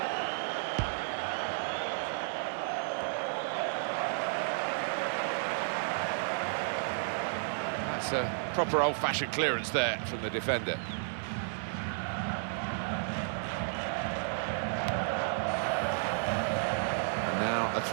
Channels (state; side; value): silent; left; 55 dB below the other